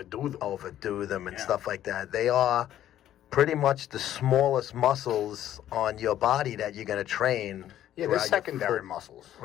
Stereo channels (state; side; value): quieter; right; 11.9 dB